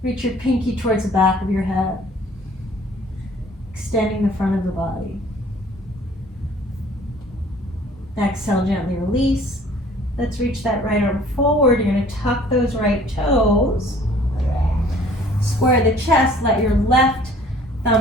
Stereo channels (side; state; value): both; normal; correlation 0.53